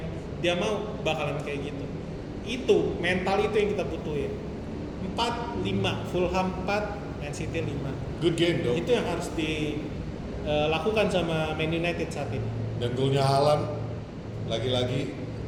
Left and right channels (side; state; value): both; identical; correlation 1.00